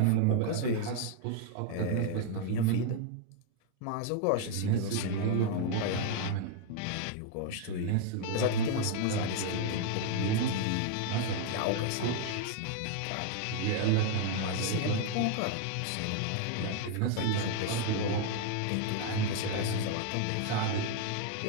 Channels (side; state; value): both; different; correlation 0.00